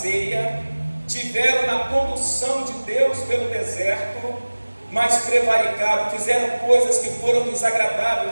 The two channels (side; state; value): both; inverted; correlation -1.00